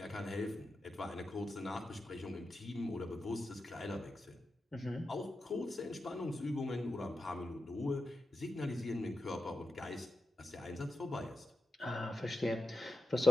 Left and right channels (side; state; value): both; normal; correlation 0.91